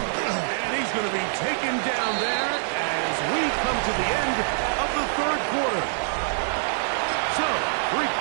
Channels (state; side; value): silent; left; digital silence